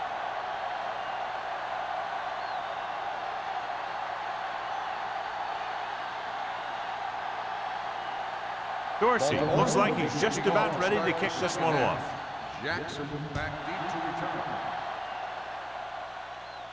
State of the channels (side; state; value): both; identical; correlation 1.00